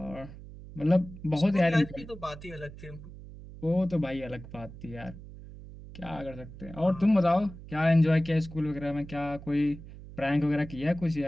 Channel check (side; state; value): right; noise; hum, 15 dB below the sound